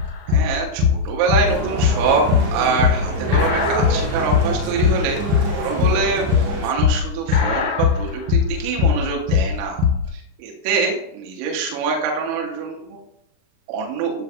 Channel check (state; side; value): late; left; 39 ms